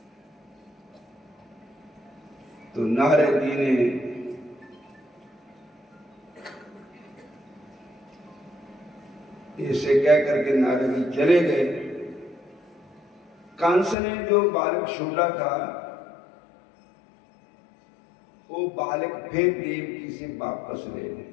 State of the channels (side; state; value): right; drops out; at 14.0 s